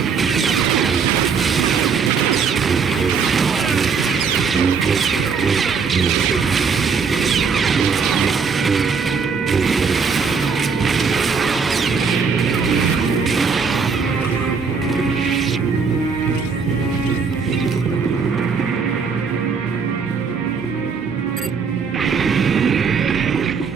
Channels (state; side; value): quieter; left; 5.6 dB